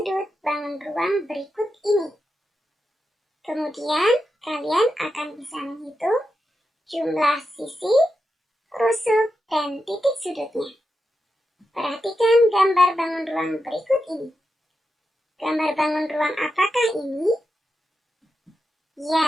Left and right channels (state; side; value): normal; both; correlation 0.88